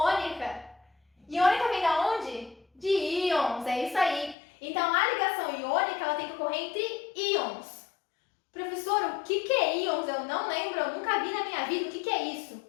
Iônica vem da onde? De íons, é isso aí. Então, a ligação iônica ela tem que ocorrer entre íons. Professor, o que é íons? Eu não lembro, eu nunca vi na minha vida. O que é isso?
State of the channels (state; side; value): drops out; right; at 4.4 s